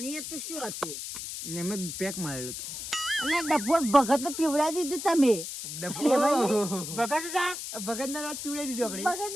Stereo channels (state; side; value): noise; left; hiss, 7 dB below the sound